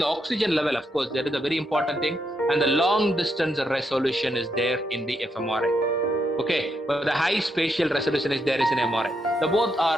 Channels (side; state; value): both; normal; correlation 0.80